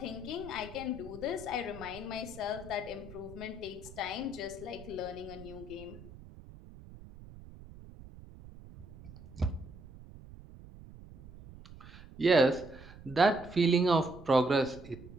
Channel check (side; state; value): right; noise; rumble, 17 dB below the sound